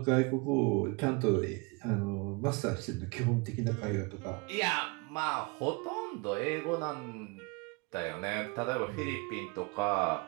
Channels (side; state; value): left; quieter; 28.3 dB